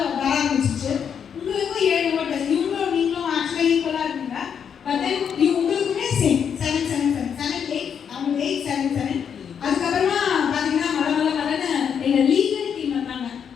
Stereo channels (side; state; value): right; quieter; 7.6 dB